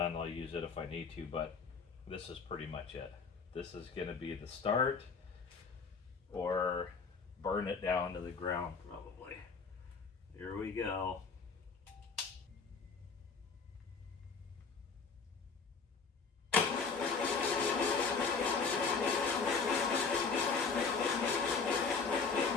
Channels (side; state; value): right; quieter; 5.1 dB